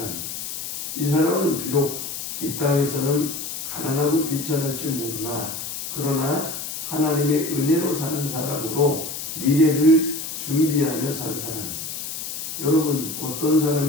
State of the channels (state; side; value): noise; left; hiss, 6 dB below the sound